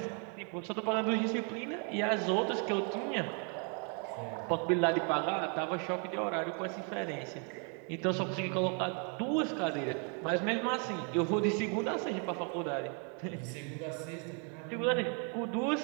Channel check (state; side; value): quieter; left; 39.0 dB